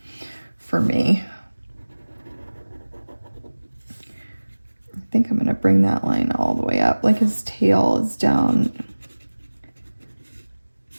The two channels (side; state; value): both; inverted; correlation -1.00